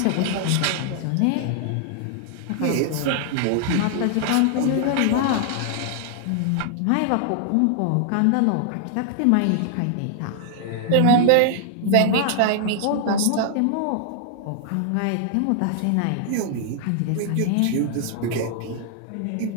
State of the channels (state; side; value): different; both; correlation 0.00